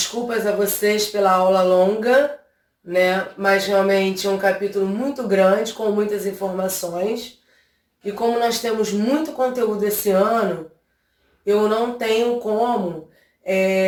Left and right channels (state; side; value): identical; both; correlation 1.00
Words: a vocês pela aula longa, né? Mas realmente é um capítulo muito grande, com muitas informações. E como nós temos muito conteúdo esse ano, eu não tenho como